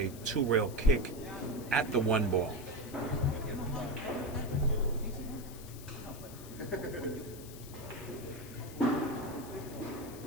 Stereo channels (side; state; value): left; noise; hiss, 16 dB below the sound